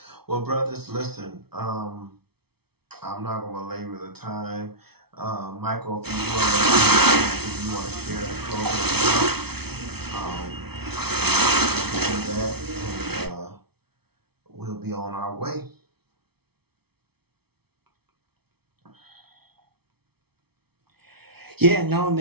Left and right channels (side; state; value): left; late; 0.96 ms